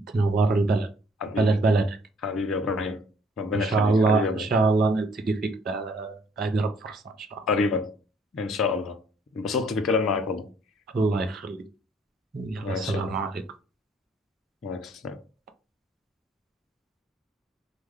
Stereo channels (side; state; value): both; normal; correlation 0.62